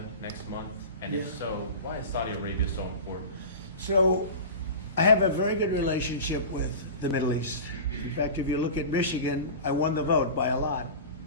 next month? And if so, why is Saudi Arabia so important? So, I have a very good relationship with the Middle East. In fact, if you look at Michigan, I won the vote by a lot.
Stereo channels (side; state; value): both; inverted; correlation -0.31